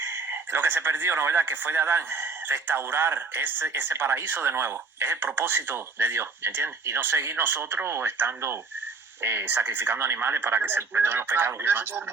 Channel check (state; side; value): quieter; left; 4.3 dB